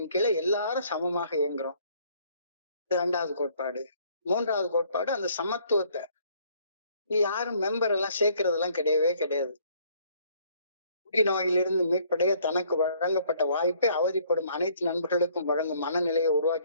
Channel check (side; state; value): both; inverted; correlation -0.62